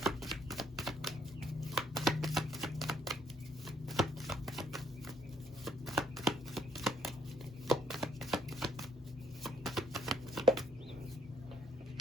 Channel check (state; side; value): normal; both; correlation 0.68